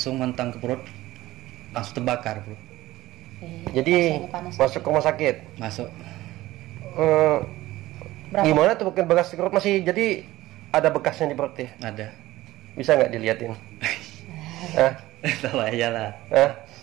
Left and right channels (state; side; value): quieter; left; 16.8 dB